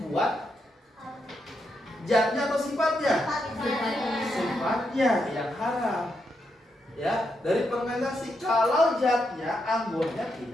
zatnya atau sifatnya? Sifatnya yang haram. Ya, dari fermentasi. Kalau zatnya anggurnya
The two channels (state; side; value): normal; both; correlation 0.82